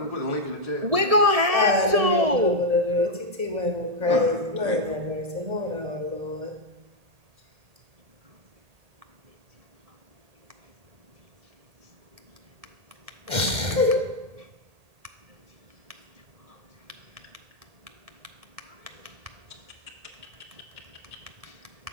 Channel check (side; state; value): left; late; 1.8 ms